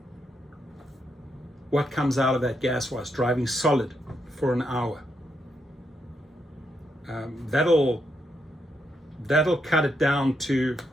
What comes out of that gas-wise, driving solid for an hour? That'll cut it down to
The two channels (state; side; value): normal; both; correlation 0.80